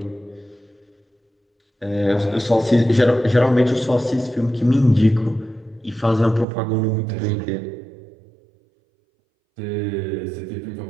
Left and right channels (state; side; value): drops out; left; at 6.5 s